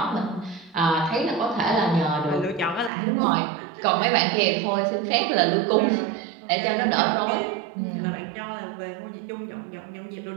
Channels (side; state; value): left; drops out; at 2.9 s